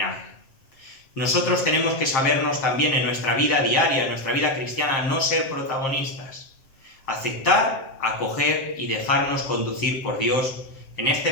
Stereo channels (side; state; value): right; late; 7.6 ms